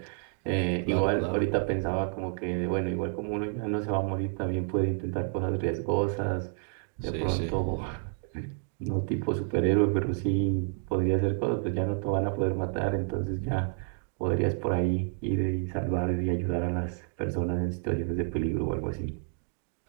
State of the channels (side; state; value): left; silent; 58 dB below the other